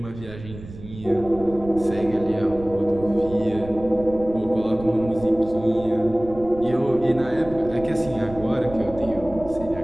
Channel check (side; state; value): right; noise; rumble, 15 dB below the sound